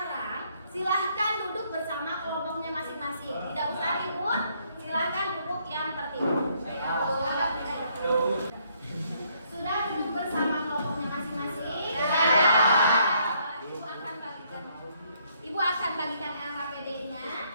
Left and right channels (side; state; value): both; inverted; correlation -0.69